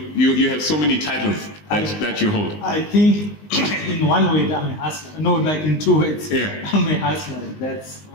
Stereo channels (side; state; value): right; late; 19 ms